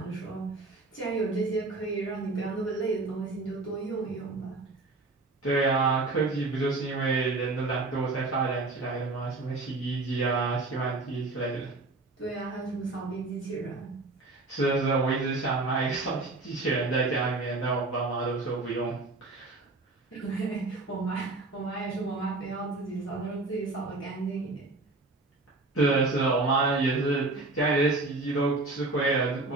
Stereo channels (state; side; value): quieter; left; 3.2 dB